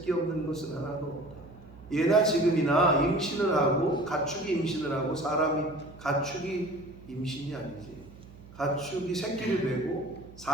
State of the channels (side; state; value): right; noise; hum, 19 dB below the sound